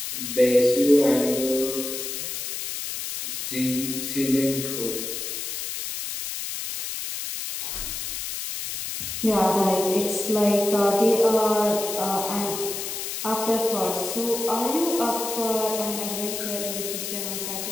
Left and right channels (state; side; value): noise; left; hiss, 5 dB below the sound